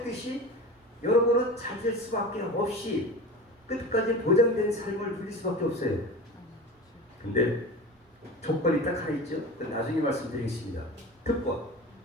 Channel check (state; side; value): normal; both; correlation 0.32